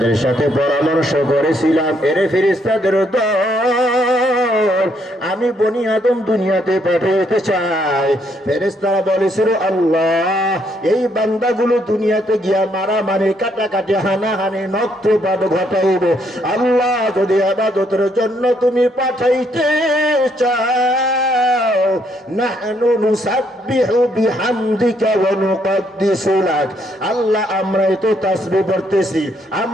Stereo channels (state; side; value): normal; both; correlation 0.72